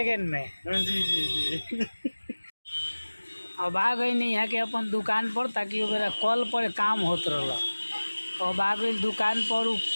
में। जी जी जी अब आ गई नहीं यहाँ के अपन दुकान पर, ताकि मेरा कल पर काम होत रहला। अब आ गई दुकान पर, उ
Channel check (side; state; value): both; inverted; correlation -1.00